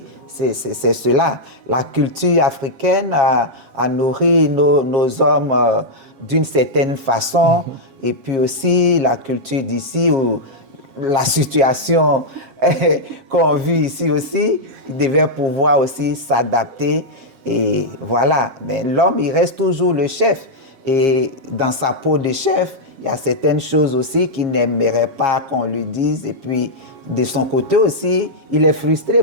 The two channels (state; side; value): late; left; 7.4 ms